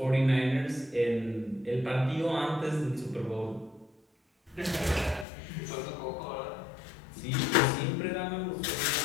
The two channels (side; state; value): right; drops out; at 5.2 s